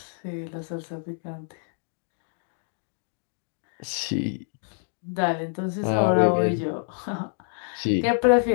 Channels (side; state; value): right; silent; 60 dB below the other